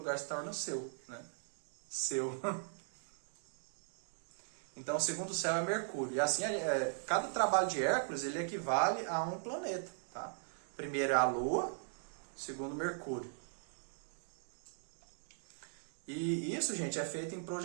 se torna seu, né? Seu. Então o segundo céu é Mercúrio. E assim, cada trabalho de Hércules, ele equivale a um planeta, tá? Primeiro é a Lua, segundo Mercúrio. E isso, gente, é feito em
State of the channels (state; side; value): silent; left; digital silence